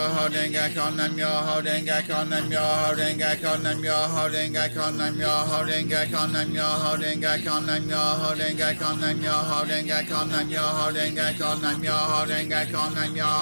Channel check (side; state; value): both; inverted; correlation -1.00